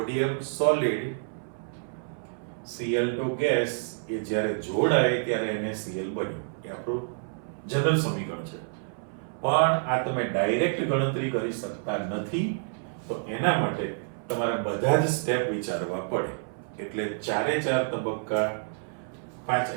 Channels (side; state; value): left; silent; 59 dB below the other